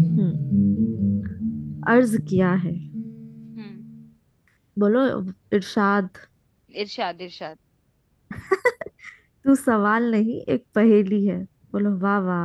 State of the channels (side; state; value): both; identical; correlation 1.00